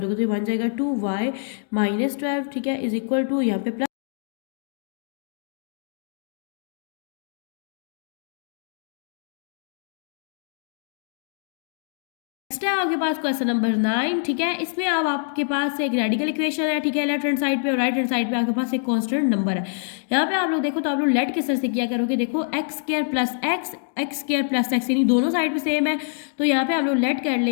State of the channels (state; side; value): silent; right; digital silence